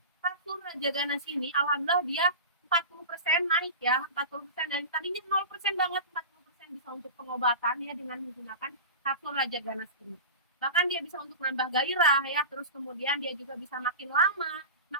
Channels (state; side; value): inverted; both; correlation -0.31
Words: kapsul Raja Ganas ini, alhamdulillah dia 40% naik ya, 40% dari tadinya 0% banget, 40% bisa untuk pengobatan ya dengan menggunakan kapsul Raja Ganas ini. Bahkan dia bisa untuk menambah gairah ya, terus kemudian dia juga bisa makin lama,